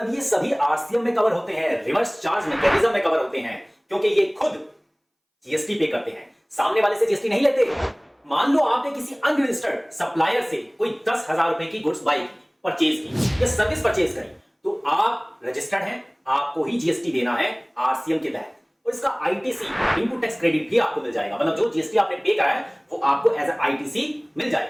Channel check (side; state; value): both; identical; correlation 1.00